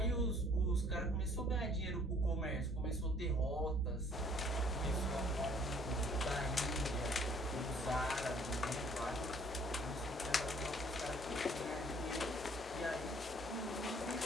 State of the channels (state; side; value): normal; both; correlation 0.59